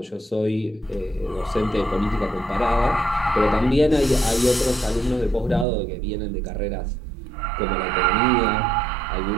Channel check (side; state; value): left; drops out; at 5.7 s